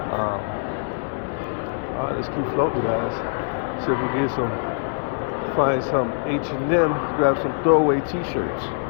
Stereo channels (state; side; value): silent; right; digital silence